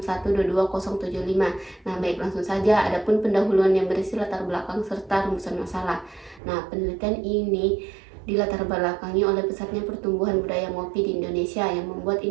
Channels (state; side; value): drops out; left; at 6.4 s